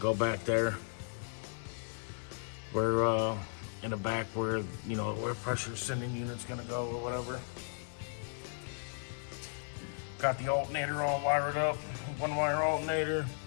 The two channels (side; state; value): right; silent; digital silence